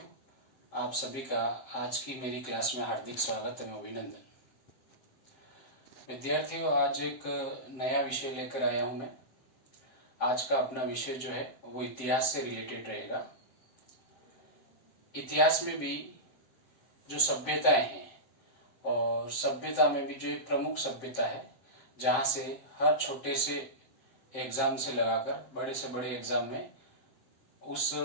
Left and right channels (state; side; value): late; right; 7.5 ms